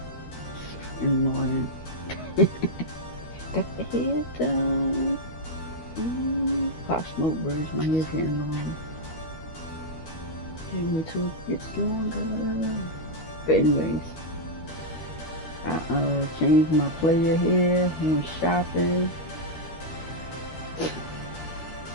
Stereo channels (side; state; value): right; late; 13 ms